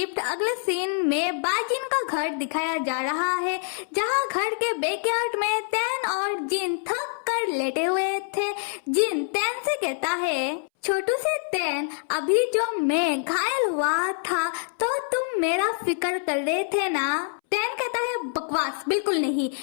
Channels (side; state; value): right; silent; 61 dB below the other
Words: अगले सीन में बाजिन का घर दिखाया जा रहा है, जहाँ घर के बैकयार्ड में तैन और जिन थक कर लेटे हुए थे। जिन तैन से कहता है, छोटू से तैन, अभी जो मैं घायल हुआ था तो तुम मेरा फिक्र कर रहे थे ना? तैन कहता है, बकवास, बिल्कुल नहीं,